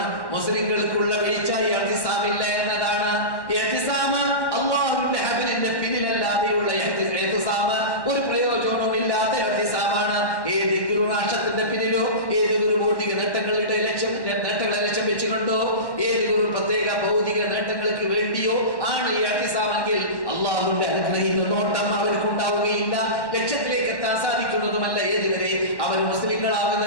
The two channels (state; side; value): late; right; 1.1 ms